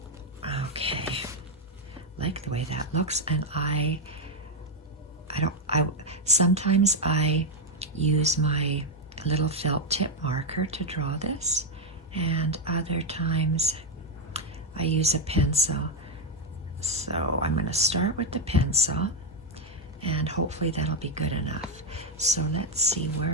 Okay, like the way that looks, and sometimes I use my little felt tip marker to draw this, and other times I use a pencil. So I'm going to start with the pencil, and hopefully that'll be good enough. So let's see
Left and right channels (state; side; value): normal; both; correlation 0.03